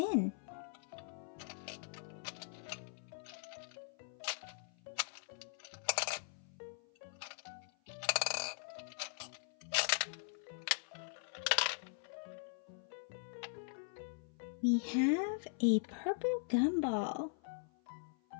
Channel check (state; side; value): silent; right; 50 dB below the other